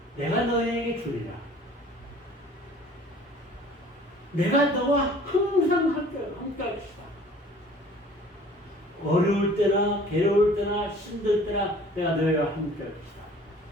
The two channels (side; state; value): both; normal; correlation 0.50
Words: 내가 너에게 주리라. 내가 너와 항상 함께 할 것이다. 어려울 때나 괴로울 때나 힘들 때나 내가 너희와 함께 할 것이다.